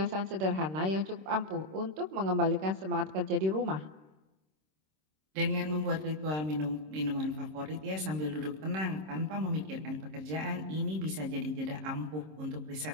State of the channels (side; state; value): left; late; 26 ms